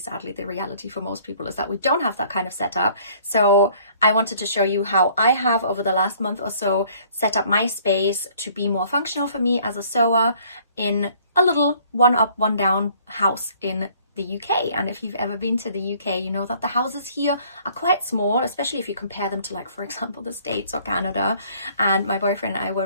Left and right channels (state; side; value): inverted; both; correlation -0.58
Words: the reality for most people is that we don't have that kind of setup. So I wanted to show you how I have over the last month or so set up my space to be more functional for me as a sewer in a little one up one down house in the UK. And if you've ever been to the UK, you know that the houses here are quite small, especially if you compare them to, like, for example, the States or Canada. And my boyfriend and I were